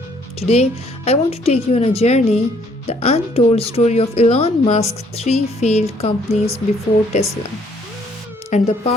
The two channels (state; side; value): normal; both; correlation 0.64